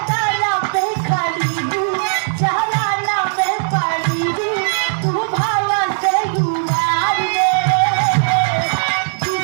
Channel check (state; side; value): silent; left; digital silence